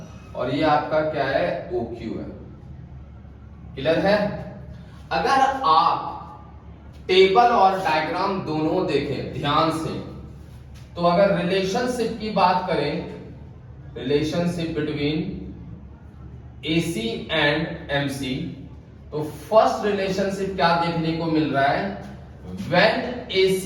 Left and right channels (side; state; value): both; identical; correlation 1.00